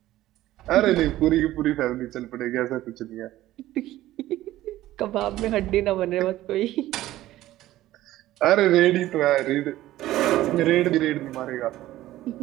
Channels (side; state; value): left; quieter; 15.1 dB